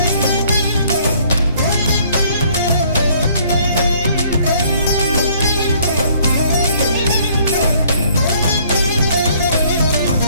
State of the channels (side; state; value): both; inverted; correlation -0.61